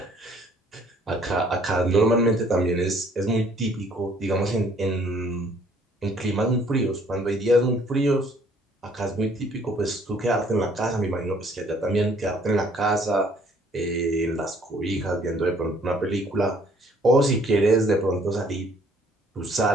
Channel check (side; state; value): both; normal; correlation 0.60